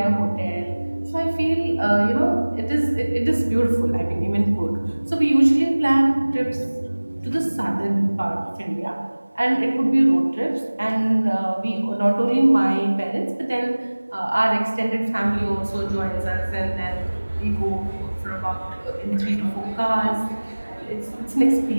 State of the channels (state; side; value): inverted; both; correlation -1.00